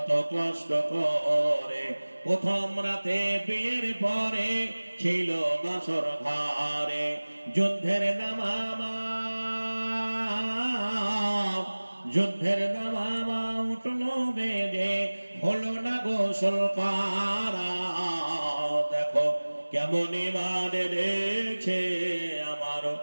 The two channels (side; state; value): both; inverted; correlation -1.00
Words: কষ্ট করে, প্রথম রাতে বিয়ের পরে ছিল বাসর ঘরে, যুদ্ধের দামামা উঠলো বেজে, হলো না গোসল করা। দেখো কেমন ঈমান এনেছে আমার